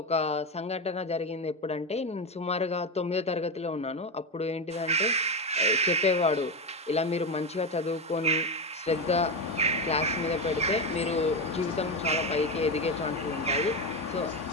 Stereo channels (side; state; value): both; normal; correlation 0.14